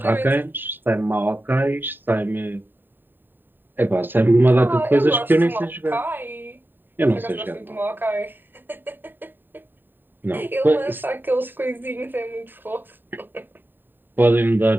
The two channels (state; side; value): late; left; 0.093 ms